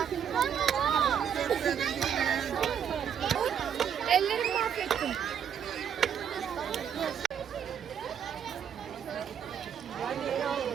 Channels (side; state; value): left; quieter; 8.3 dB